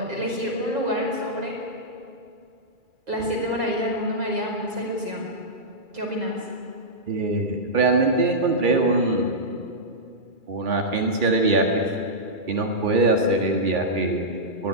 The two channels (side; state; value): left; late; 2.3 ms